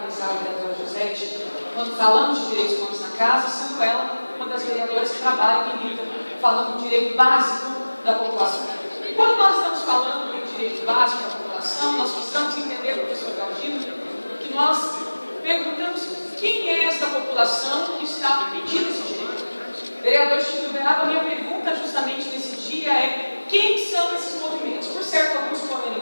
a vereadora Josete, quando falamos de direitos humanos na casa, sendo ela uma das vereadoras que trabalha e milita, falando do direito básico da população. E quando nós estamos falando do direito básico da população, nós precisamos entender, professor Galdino, que nós perguntamos quem é essa população que está pedindo esse direito. Vereador Chico Beraba, a minha pergunta justamente nesse dia é: quem são esses movimentos? Por certo, alguns foram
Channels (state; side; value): inverted; both; correlation -1.00